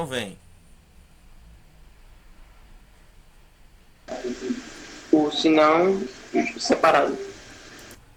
vem. O sinão separado.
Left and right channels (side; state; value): both; identical; correlation 1.00